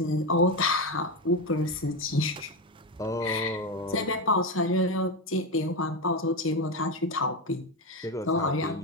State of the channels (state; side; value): normal; both; correlation 0.13